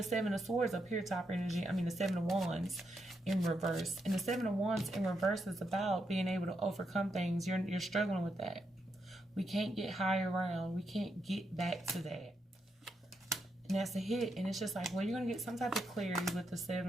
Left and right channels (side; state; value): both; normal; correlation 0.81